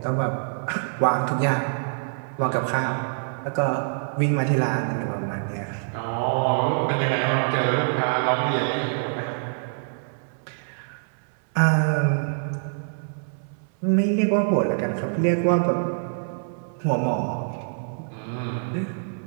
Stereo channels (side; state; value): left; silent; 61 dB below the other